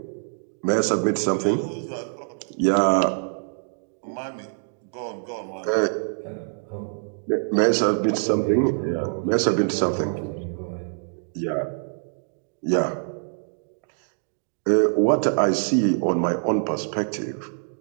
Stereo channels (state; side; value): silent; left; digital silence